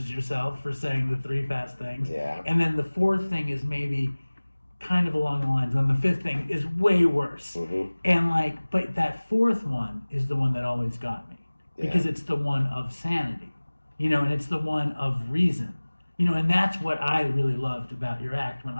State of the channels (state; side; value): inverted; both; correlation -1.00